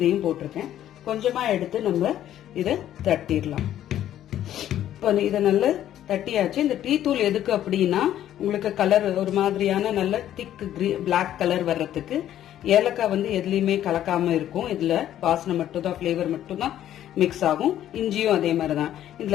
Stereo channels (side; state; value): right; quieter; 11.7 dB